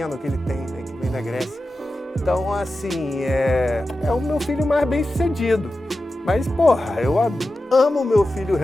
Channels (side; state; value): both; normal; correlation 0.92